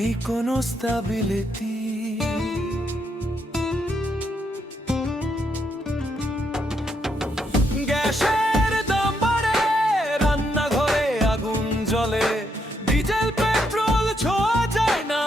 কোনো স্টেবিলিটি। গ্যাসের দাম বাড়ে, রান্নাঘরে আগুন জ্বলে, ডিজেল পেট্রোল ছোঁয়া যায় না,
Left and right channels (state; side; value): normal; both; correlation 0.77